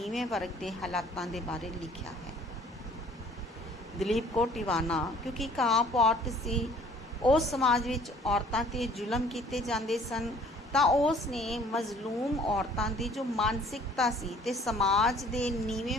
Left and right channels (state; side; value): normal; both; correlation 0.55